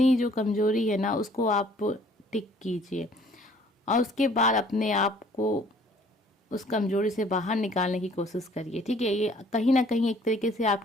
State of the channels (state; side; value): normal; both; correlation 0.57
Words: जो कमज़ोरी है ना उसको आप टिक कीजिए। और उसके बाद अपने आप को उस कमजोरी से बाहर निकालने की कोशिश करिए। ठीक है, ये कहीं ना कहीं एक तरीके से